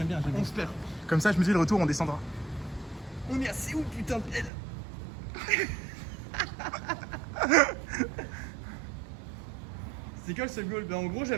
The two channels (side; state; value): left; drops out; at 4.5 s